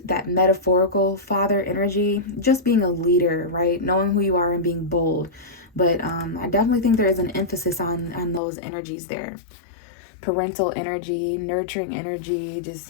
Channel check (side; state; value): right; drops out; at 8.4 s